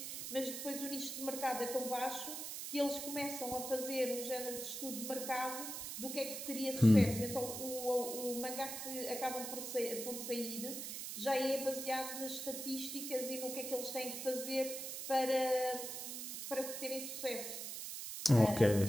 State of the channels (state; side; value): noise; right; hiss, 6 dB below the sound